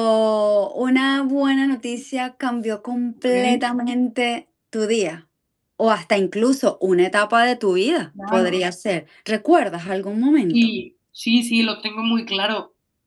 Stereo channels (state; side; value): identical; both; correlation 1.00